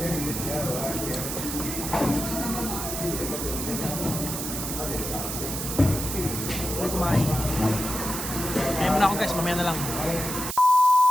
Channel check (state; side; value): noise; right; hiss, 5 dB below the sound